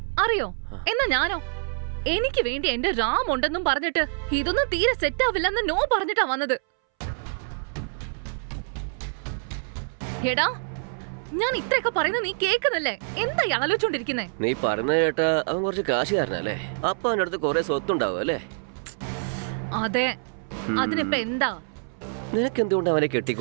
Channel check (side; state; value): left; silent; 60 dB below the other